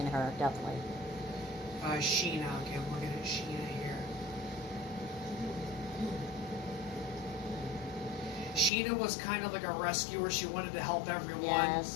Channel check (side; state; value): right; drops out; at 8.7 s